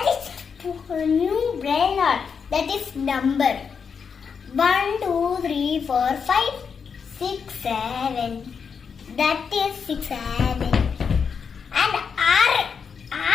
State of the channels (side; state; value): right; quieter; 6.2 dB